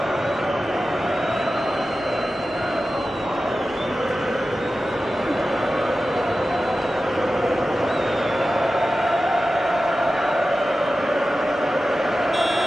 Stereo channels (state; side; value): normal; both; correlation 0.94